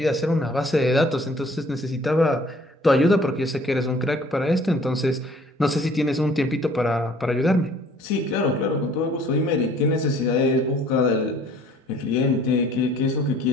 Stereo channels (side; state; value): both; normal; correlation 0.54